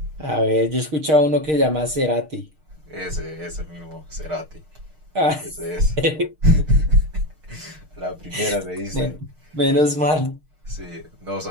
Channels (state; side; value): late; left; 6.5 ms